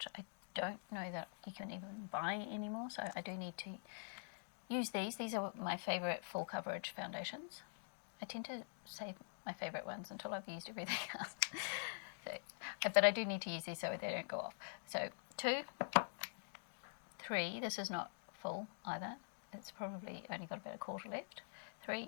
I don't know that you can even buy anymore, so I do need to use these. These are my favourite full coverage foundations. I tend to save my favourite ones until I've used everything else. Okay. But I do need to use these so they don't go off. So 2, 3, this is not full either. It's probably only got about a quarter left.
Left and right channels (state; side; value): silent; right; digital silence